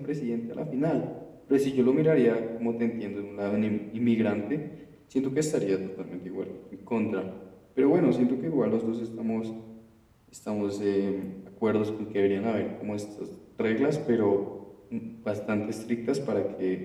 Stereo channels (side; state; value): both; identical; correlation 1.00